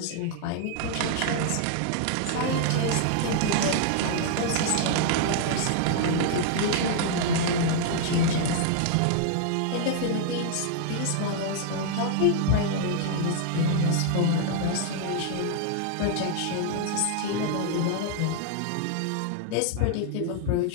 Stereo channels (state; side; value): different; both; correlation 0.00